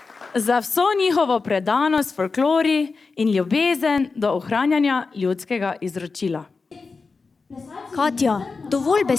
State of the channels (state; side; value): quieter; right; 4.4 dB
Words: Za vso njihovo predanost folklori in ljubezen do ohranjanja ljudskega izročila. Katja, dovolj